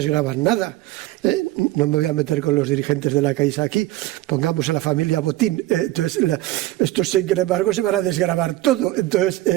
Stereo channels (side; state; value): left; quieter; 16.9 dB